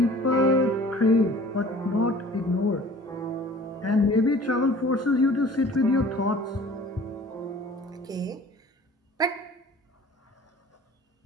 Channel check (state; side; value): normal; both; correlation 0.47